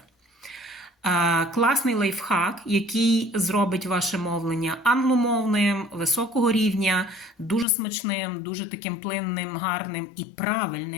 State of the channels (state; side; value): drops out; right; at 7.7 s